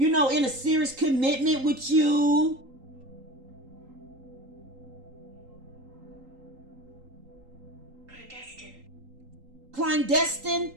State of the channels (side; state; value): left; late; 3.8 ms